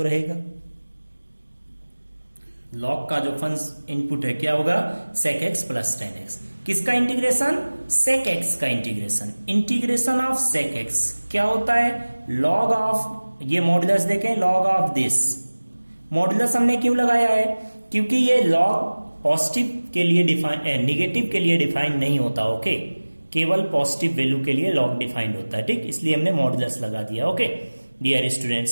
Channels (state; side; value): inverted; both; correlation -1.00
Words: रहेगा. लॉग का जो फंक्शन इनपुट है क्या होगा? sec x plus 10x. किसका इंटीग्रेशन? sec x का integration. Integration of sec x क्या होता है? लॉग ऑफ, ये मॉडुलस देखें, लॉग ऑफ दिस. मॉडुलस हमने क्यों लगाया है? क्योंकि ये लॉग पॉजिटिव के लिए डिफाइन, नेगेटिव के लिए डिफाइन नहीं होता. ओके, केवल पॉजिटिव वैल्यू के लिए लॉग डिफाइंड होता है. ठीक, इसलिए हमने मॉडुलस लगा दिया. Okay dear